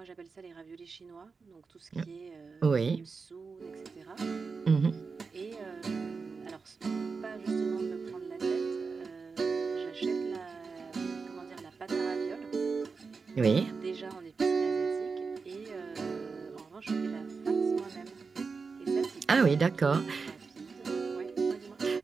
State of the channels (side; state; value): left; quieter; 4.8 dB